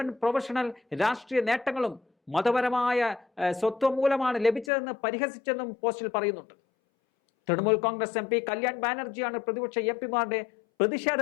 പ്രൊഫഷണൽ രാഷ്ട്രീയ നേട്ടങ്ങളും മതപരമായ സ്വത്വം മൂലമാണ് ലഭിച്ചതെന്ന് പരിഹസിച്ചെന്നും പോസ്റ്റിൽ പറയുന്നുണ്ട്. തൃണമൂൽ കോൺഗ്രസ് MP കല്യാൺ ബാനർജിയാണ് പ്രതിപക്ഷ MPമാരുടെ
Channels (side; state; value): right; drops out; at 4.7 s